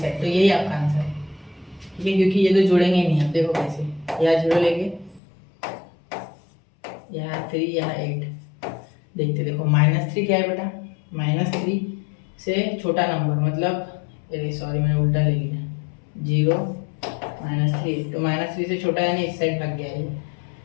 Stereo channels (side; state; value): right; drops out; at 5.2 s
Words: तो यही आपका आंसर है, ठीक है, क्योंकि ये तो जुड़ेंगे ही नहीं, आप देखो कैसे, यहाँ 0 लेंगे, यहाँ 3, यहाँ 8, देखते देखो -3 क्या है बेटा, -3 से छोटा नंबर, मतलब सॉरी मैंने उल्टा ले लिया, 0 -3, तो -3 से छोटा यानी इस साइड भाग गया ये,